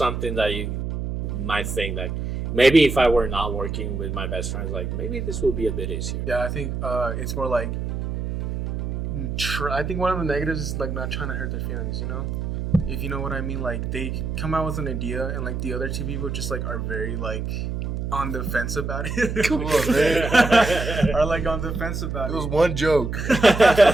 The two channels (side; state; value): right; noise; hum, 3 dB below the sound